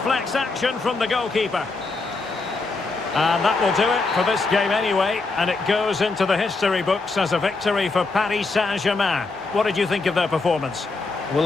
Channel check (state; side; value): quieter; right; 3.7 dB